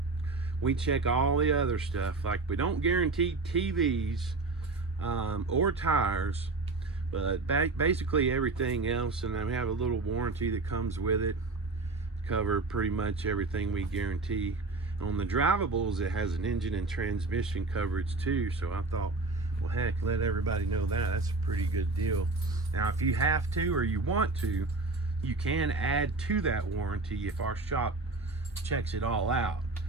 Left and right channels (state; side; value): quieter; left; 3.5 dB